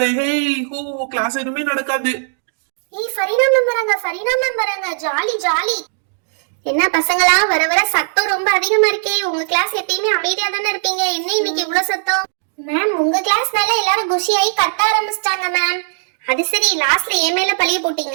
ஹே ஹூ, கிளாஸ் எதுவுமே நடக்காது. ஏய், ஃபரீனா மேம் வராங்க, ஃபரீனா மேம் வராங்க, ஜாலி ஜாலி. என்ன பசங்களா, வர வர சத்தம் ரொம்ப அதிகமா இருக்கே. உங்க கிளாஸ் எப்பயுமே அமைதியா தானே இருப்பீங்க, என்ன இன்னைக்கு இவ்வளவு சத்தம்? மேம், உங்க கிளாஸ்னால எல்லாரும் குஷியாயி கத்த ஆரம்பிச்சிட்டாங்க மேம். அது சரி, லாஸ்ட்ல என் மேல பழிய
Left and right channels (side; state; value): left; silent; digital silence